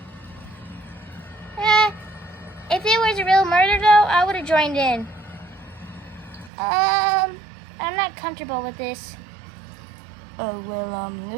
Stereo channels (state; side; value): drops out; left; at 6.5 s